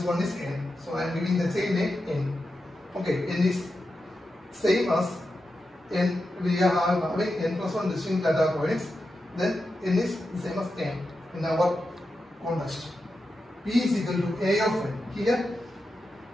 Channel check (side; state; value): both; normal; correlation 0.89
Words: 1 is n. So I am giving the same name n. Okay, n is same as n. We are having n plus 1 distinct data points. Then n is the same as n in our context. P is equal to a of n. Here